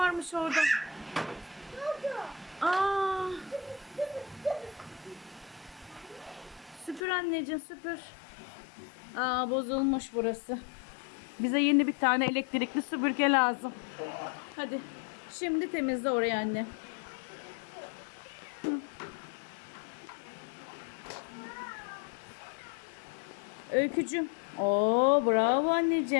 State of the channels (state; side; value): drops out; right; at 7.0 s